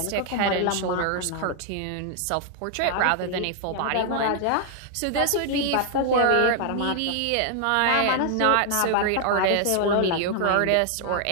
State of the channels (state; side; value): different; both; correlation 0.00